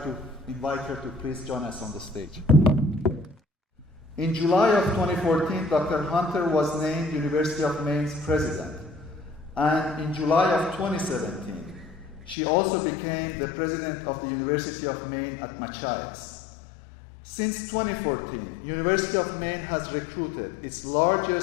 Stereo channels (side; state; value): right; drops out; at 12.4 s